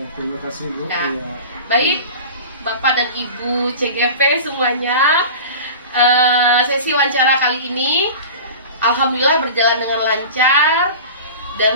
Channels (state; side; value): inverted; both; correlation -0.35